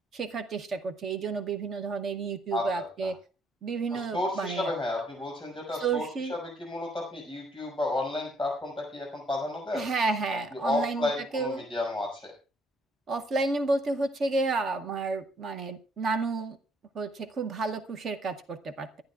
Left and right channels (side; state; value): both; normal; correlation 0.67